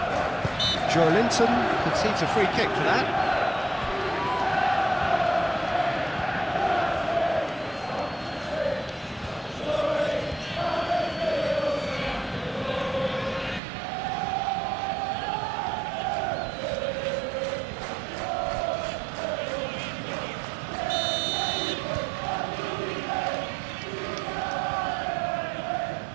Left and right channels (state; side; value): drops out; left; at 13.6 s